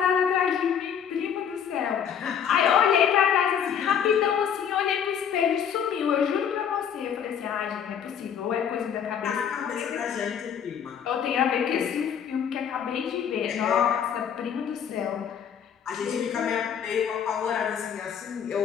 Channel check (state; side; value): quieter; right; 8.1 dB